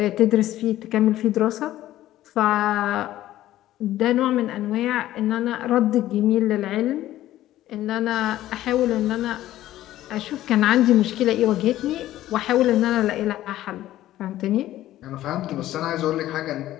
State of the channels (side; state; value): right; quieter; 14.1 dB